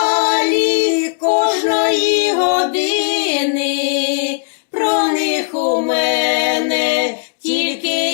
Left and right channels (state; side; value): silent; right; 69 dB below the other